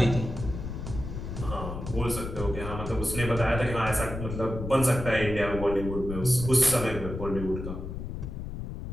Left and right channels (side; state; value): left; noise; rumble, 7 dB below the sound